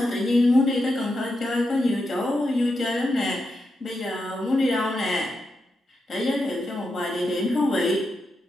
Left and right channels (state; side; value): normal; both; correlation 0.86